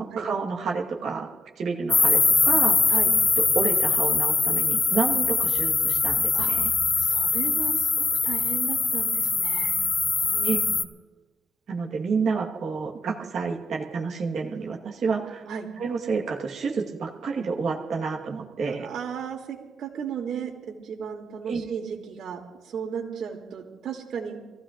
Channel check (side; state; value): both; normal; correlation 0.84